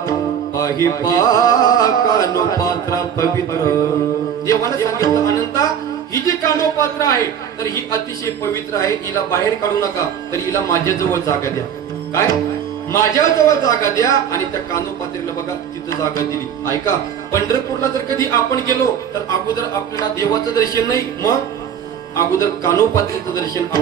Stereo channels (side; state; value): left; quieter; 8.5 dB